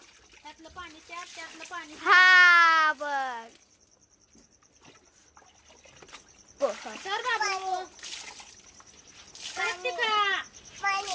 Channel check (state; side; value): identical; both; correlation 1.00